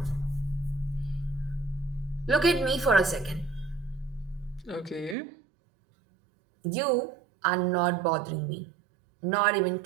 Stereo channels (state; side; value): drops out; left; at 5.2 s